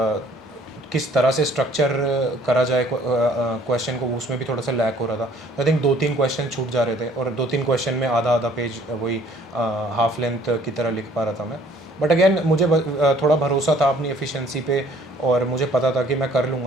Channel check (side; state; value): both; normal; correlation 0.57